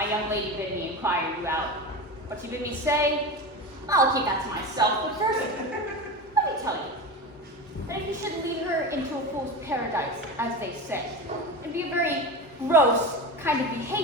young lady bid me inquire you out. What she bid me say, I'll keep that to myself. But first, let me tell you that if you should lead her into a fool's paradise, as they say, it'd be a very gross kind of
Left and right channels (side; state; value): both; normal; correlation 0.25